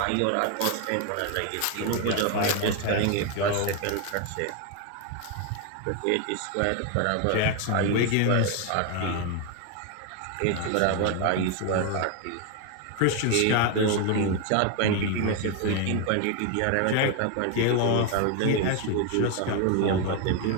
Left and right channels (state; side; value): different; both; correlation 0.01